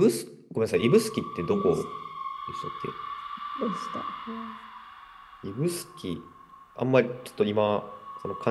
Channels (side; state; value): both; identical; correlation 1.00